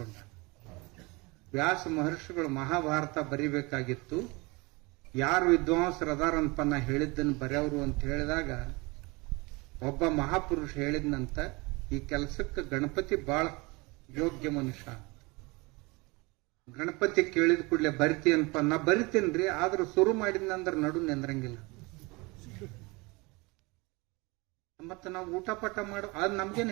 ವ್ಯಾಸ ಮಹರ್ಷಿಗಳು ಮಹಾಭಾರತ ಬರಿಬೇಕಾಗಿತ್ತು. ಯಾರು ವಿದ್ವಾಂಸರದಾರಂತ ನಾ ಹೇಳಿದ್ದನ್ನು ಬರೆಯವರು ಅಂತ ಹೇಳಿದಾಗ ಒಬ್ಬ ಮಹಾಪುರುಷ ಹೇಳಿದ್ನಂತ, ಈ ಕೆಲಸಕ್ಕೆ ಗಣಪತಿ ಬಹಳ ಯೋಗ್ಯ ಮನುಷ್ಯ. ಗಣಪತಿ ಕೇಳಿದ ಕೂಡಲೇ ಬರಿತೀನಪ್ಪ. ನಾ ಬರಿತೀನ್ರಿ, ಆದ್ರೂ ಶುರು ಮಾಡಿದ್ನಂದ್ರ ನಡು ನಿಂದ್ರಂಗಿಲ್ಲ. ಮತ್ತ ನಾವು ಊಟ ಪಟ ಮಾಡು ಅದ್ ನಮ್ಗೇನ್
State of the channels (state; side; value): quieter; left; 25.7 dB